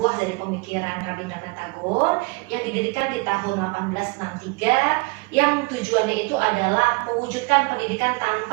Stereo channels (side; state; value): left; quieter; 27.3 dB